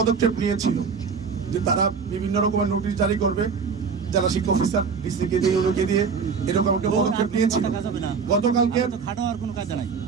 নিয়েছিল যে তারা বিভিন্ন রকমের নোটিশ জারি করবে, জেলা শিক্ষা অফিসার ডিসিকে দিয়ে ওকে দিয়ে এরকম একটা পদক্ষেপ নিয়েছিল। গতকালকে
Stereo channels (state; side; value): quieter; left; 5.6 dB